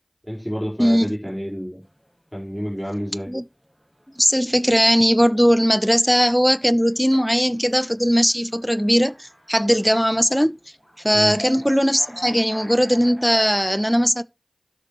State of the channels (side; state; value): both; identical; correlation 1.00